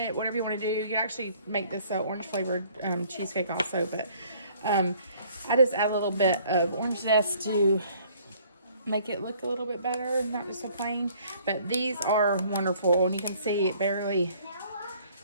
whatever you want to do. You can actually make this orange flavored cheesecake also, but I just add a little bit of orange zest to make it look a little bit better, not just so plain. But these are wonderful, and you can see it barely,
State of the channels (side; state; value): both; inverted; correlation -0.58